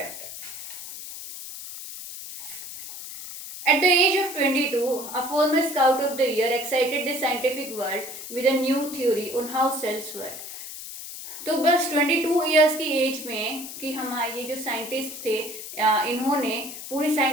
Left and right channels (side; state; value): left; noise; hiss, 10 dB below the sound